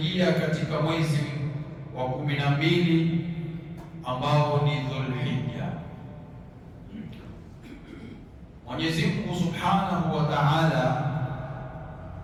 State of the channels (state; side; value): identical; both; correlation 1.00